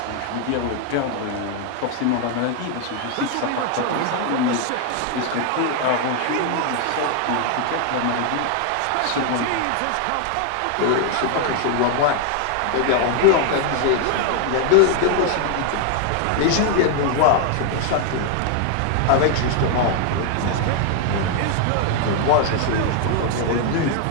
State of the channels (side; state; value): both; different; correlation 0.00